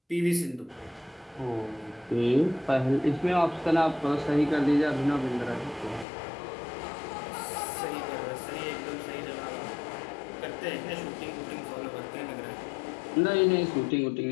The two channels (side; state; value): right; drops out; at 6.1 s